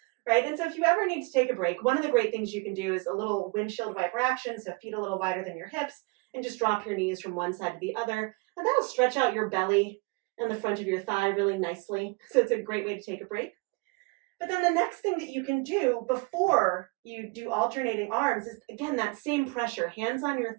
right? And so if you ever need to take a break, one of the great things you can do is a little windshield wiper action, so feet a little wider than your hips, and just drop your knees from one side to the other, and that'll stretch out your belly and the front of your thigh really nicely, so it's a great way to take a break. But then the next thing that you can do before you do alternating arms is, again, that same pressure, hands on your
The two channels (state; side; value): quieter; left; 28.2 dB